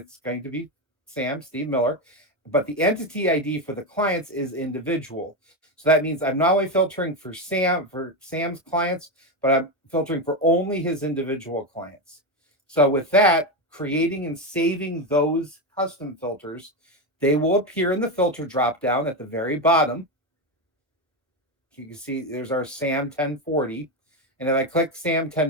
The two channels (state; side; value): normal; both; correlation 0.12